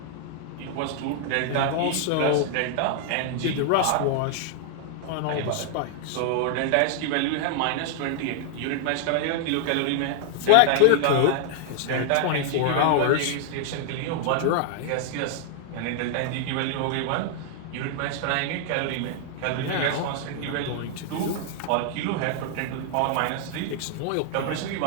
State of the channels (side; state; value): both; different; correlation 0.00